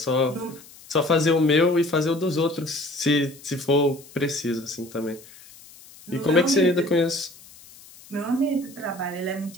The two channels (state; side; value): noise; left; hiss, 22 dB below the sound